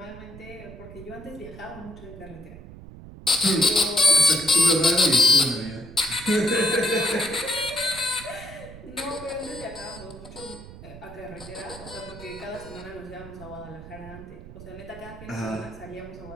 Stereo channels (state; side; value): noise; right; rumble, 16 dB below the sound